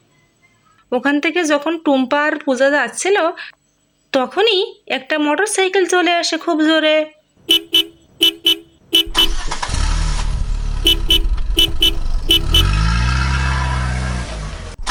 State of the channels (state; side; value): identical; both; correlation 1.00